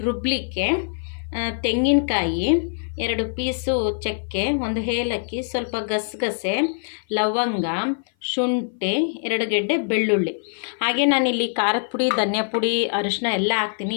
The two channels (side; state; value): right; silent; 56 dB below the other